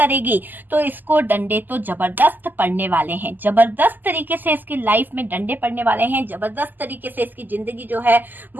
तो इसको डंडे तो जबरदस्त पड़ने वाले हैं, जबरदस्त तरीके से इसकी लाइफ में डंडे पड़ने वाले हैं, जबरदस्त तरीके से इसकी जिंदगी जो है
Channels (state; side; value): late; left; 0.087 ms